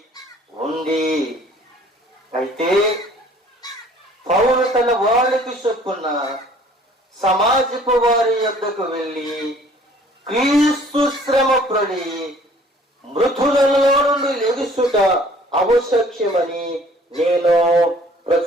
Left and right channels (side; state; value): both; normal; correlation 0.54